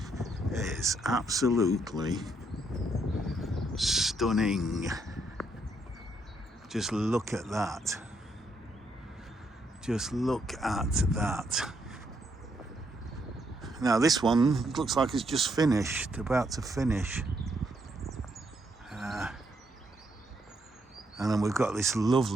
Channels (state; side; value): normal; both; correlation 0.75